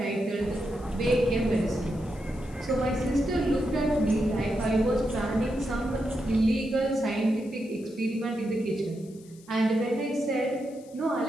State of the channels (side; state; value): left; noise; hiss, 25 dB below the sound